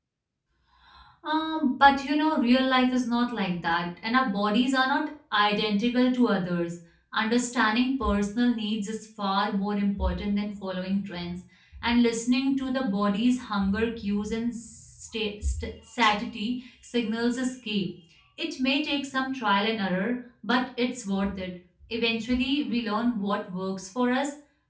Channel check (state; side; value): identical; both; correlation 1.00